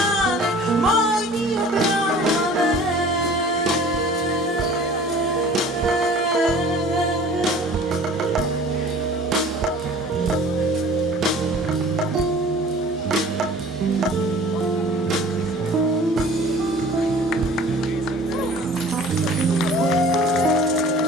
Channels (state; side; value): normal; both; correlation 0.46